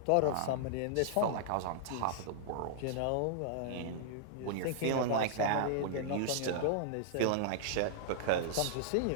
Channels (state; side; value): different; both; correlation -0.01